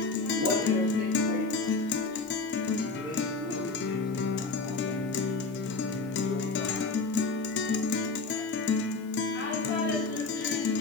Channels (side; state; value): right; quieter; 3.9 dB